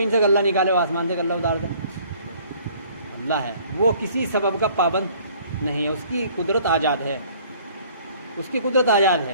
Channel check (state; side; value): inverted; both; correlation -0.55